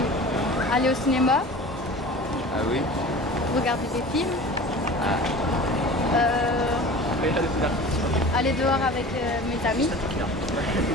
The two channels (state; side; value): normal; both; correlation 0.38